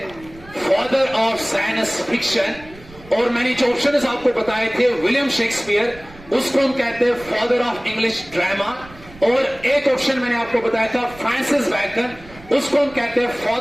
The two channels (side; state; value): right; noise; rumble, 21 dB below the sound